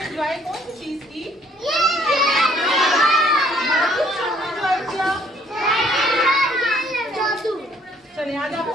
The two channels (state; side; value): normal; both; correlation 0.62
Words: एंजॉय कौन सी चीज की? एंजॉय किया? चलिए आज